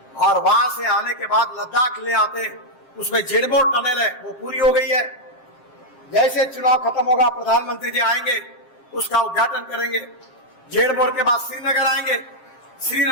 और वहां से आने के बाद लद्दाख ले आते, उसमें जेडबोर टनल है वो पूरी हो गई है। जैसे चुनाव खत्म होगा प्रधानमंत्री जी आएंगे, उसका उद्घाटन करेंगे। जेडबोर के बाद श्रीनगर आएंगे,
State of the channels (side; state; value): right; late; 7.7 ms